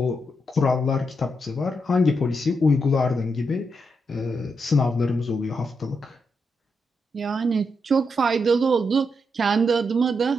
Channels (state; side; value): normal; both; correlation 0.82